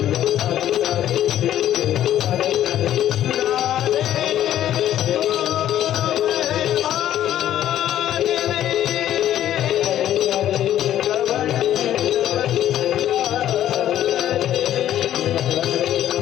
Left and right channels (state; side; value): quieter; right; 11.9 dB